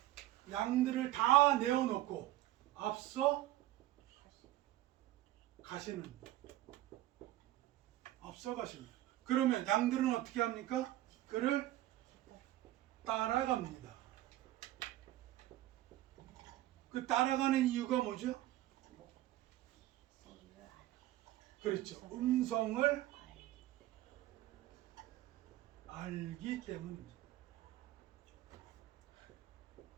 양들을 다 내어놓고 앞서 가시는. 그러면 양들은 어떻게 합니까? 그를 따라갑니다. 그 따라가는 이유가 뭐죠? 그렇죠. 음성을 알기 때문입니다.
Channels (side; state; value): left; quieter; 15.2 dB